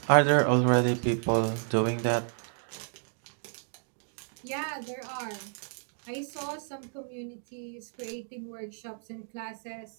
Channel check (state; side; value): silent; left; 57 dB below the other